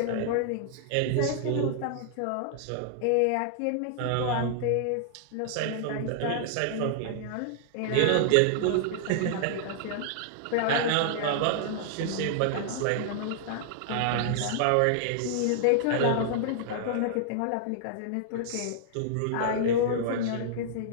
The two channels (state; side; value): different; both; correlation -0.01